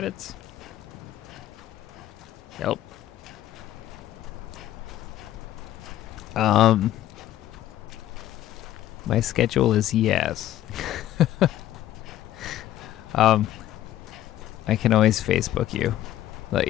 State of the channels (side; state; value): right; quieter; 13.2 dB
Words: Yep. My schedule is yes. I can always Facebook you, let